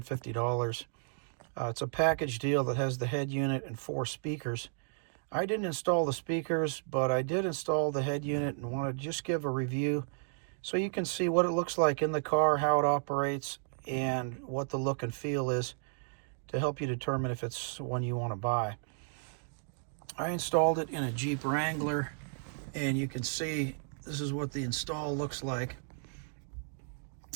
It's a package deal that has the head unit and 4 speakers. I didn't install the speakers, but I did install the head unit and want to just give a review so you can see what it looks like in the car, how it operates, and what the look and feel is to help you determine if it's one you want to buy. I installed it in a Jeep Wrangler, and you can see this is what the install looks like.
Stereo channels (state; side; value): silent; left; digital silence